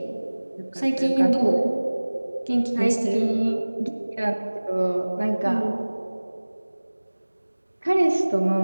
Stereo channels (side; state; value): both; inverted; correlation -1.00